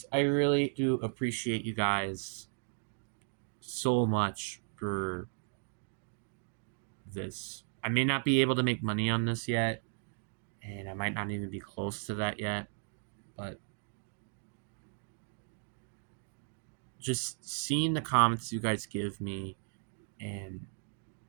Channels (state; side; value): silent; left; 54 dB below the other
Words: I really do appreciate you guys so much for this. I may not be able to make money on this yet, and I might not even be close to that yet, but just seeing the comments you guys give me and